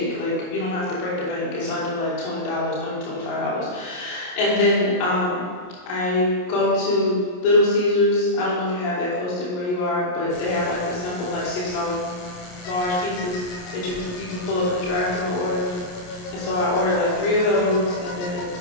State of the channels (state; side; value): late; right; 28 ms